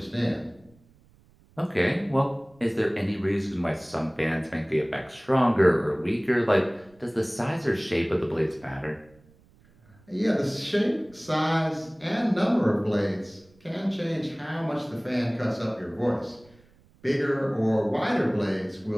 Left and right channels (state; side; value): noise; right; rumble, 30 dB below the sound